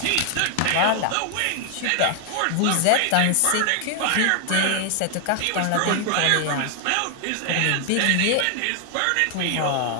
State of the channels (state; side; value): different; both; correlation 0.00